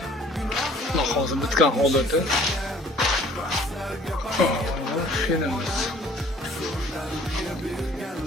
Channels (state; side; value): normal; both; correlation 0.54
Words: Xudo xohlasa bitgan holati. Fenimiz.